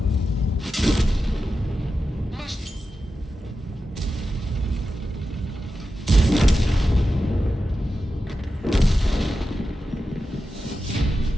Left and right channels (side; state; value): both; normal; correlation 0.91